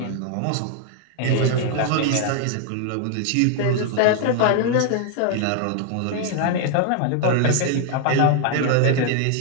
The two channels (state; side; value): different; both; correlation 0.00